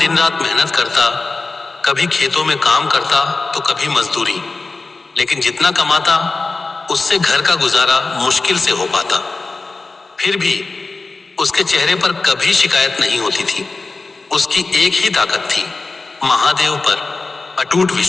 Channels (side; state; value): right; quieter; 3.7 dB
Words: रात मेहनत करता, कभी खेतों में काम करता तो कभी मजदूरी, लेकिन जितना कमाता उससे घर का गुजारा मुश्किल से हो पाता। फिर भी उसके चेहरे पर कभी शिकायत नहीं होती थी। उसकी एक ही ताकत थी, महादेव पर अटूट